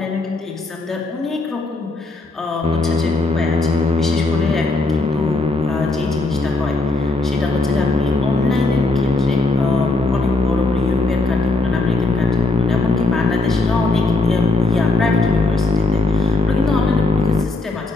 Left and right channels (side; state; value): right; quieter; 3.1 dB